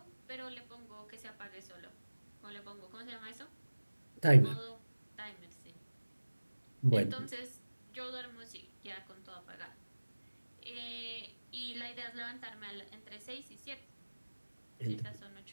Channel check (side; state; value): both; inverted; correlation -1.00